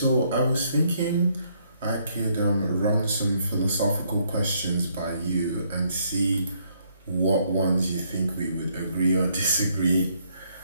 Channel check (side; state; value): both; inverted; correlation -0.70